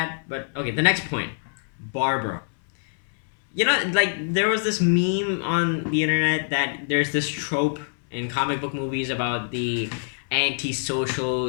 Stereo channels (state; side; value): silent; right; 62 dB below the other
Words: but okay, the next point, Barbara. You know, like, there was this meme on the internet that there's this trope in comic book movies about the antisocial,